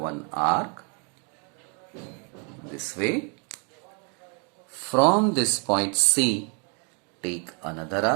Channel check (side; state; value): left; quieter; 37.3 dB